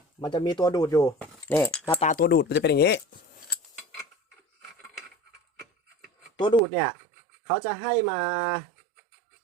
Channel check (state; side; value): drops out; left; at 6.6 s